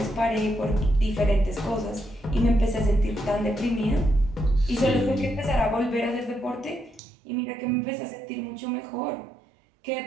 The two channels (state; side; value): drops out; left; at 7.0 s